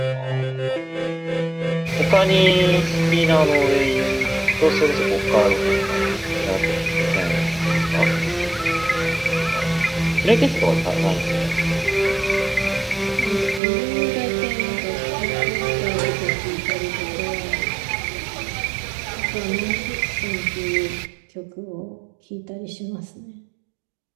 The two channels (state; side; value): drops out; left; at 13.6 s